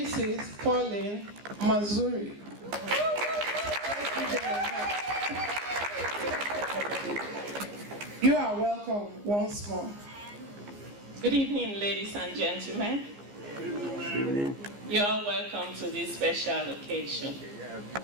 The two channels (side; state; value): left; late; 15 ms